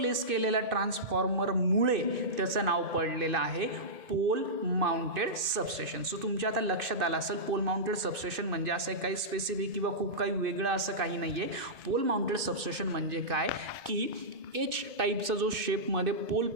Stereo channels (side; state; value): left; late; 2.6 ms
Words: केलेल्या ट्रान्सफॉर्मरमुळे त्याचं नाव पडलेलं आहे पोल माउंटेड सबस्टेशन. सो तुमच्या आता लक्षात आलं असेल पोल माउंटेड सबस्टेशन म्हणजे असं काही स्पेसिफिक किंवा खूप काही वेगळं असं काही नाही आहे. पोल माउंटेड सबस्टेशन म्हणजे काय की एच टाईपचा जो शेपमध्ये पोल